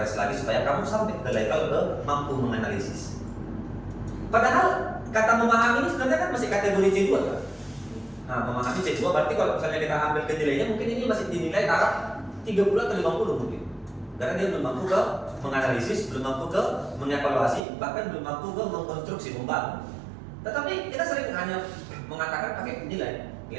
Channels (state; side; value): drops out; left; at 17.6 s